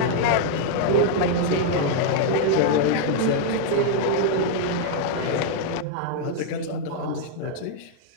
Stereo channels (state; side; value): different; both; correlation 0.00